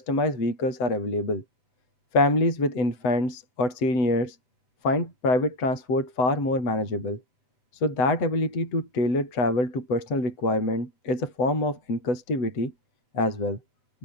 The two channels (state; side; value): late; right; 7.9 ms